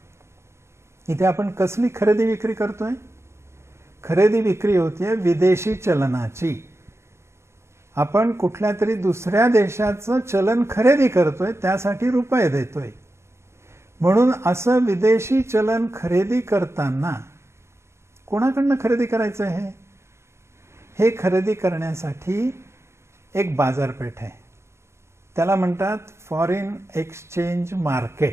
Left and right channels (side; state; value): left; late; 0.13 ms